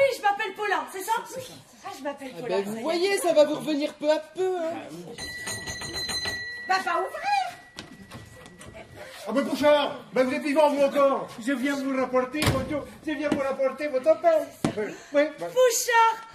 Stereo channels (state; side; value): identical; both; correlation 1.00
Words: je m'appelle Paulin, c'est ça? Ah, je m'appelle Paulin. Ben, vous voyez, ça va vous revenir peu à peu. Hein. Bah, pas ouvrir. Ah, mais Bouchard, ben, vous êtes vivant, vous encore. Je viens vous rapporter votre pain. Oui. Pouchard.